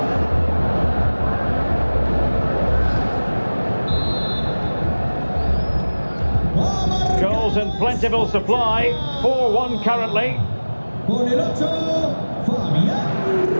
Goals in plentiful supply. 4-1 currently. Con el 8, Fabián Ruiz.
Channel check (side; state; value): both; inverted; correlation -1.00